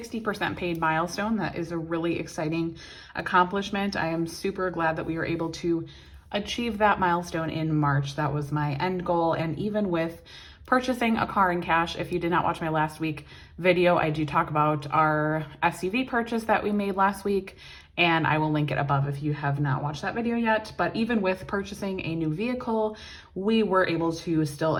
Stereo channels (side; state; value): both; identical; correlation 1.00